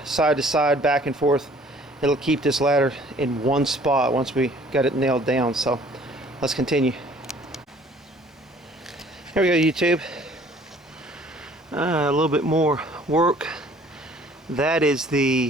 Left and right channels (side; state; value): both; normal; correlation 0.55